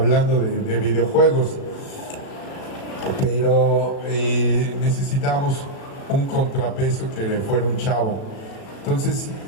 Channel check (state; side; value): late; right; 36 ms